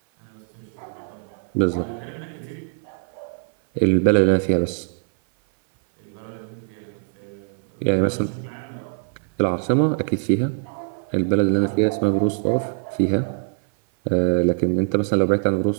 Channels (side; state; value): left; silent; 56 dB below the other